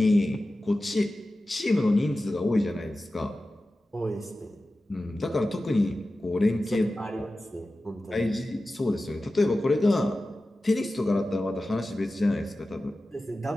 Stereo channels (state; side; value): normal; both; correlation 0.95